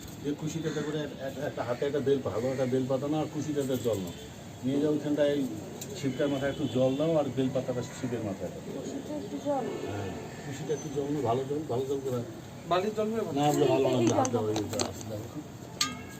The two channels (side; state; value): both; identical; correlation 1.00